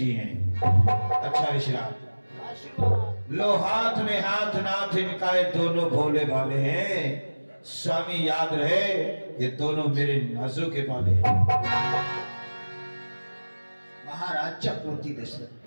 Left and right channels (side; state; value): both; inverted; correlation -1.00